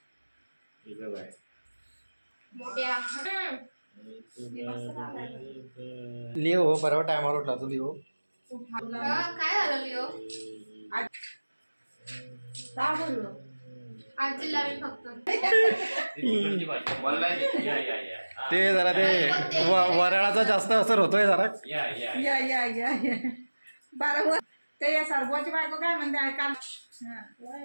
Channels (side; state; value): both; inverted; correlation -1.00